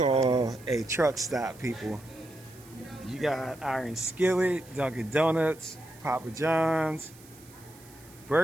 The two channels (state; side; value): noise; right; hiss, 23 dB below the sound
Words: a truck stop, people. You got Iron Skillet, Dunkin' Donuts, Papa John's,